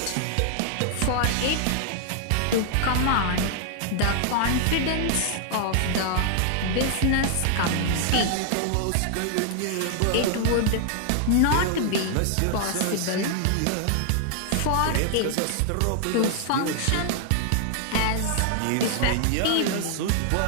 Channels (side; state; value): both; different; correlation 0.00